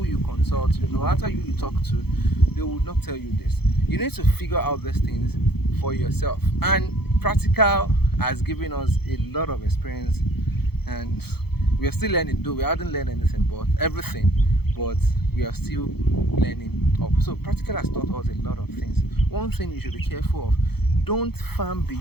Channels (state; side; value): late; right; 0.97 ms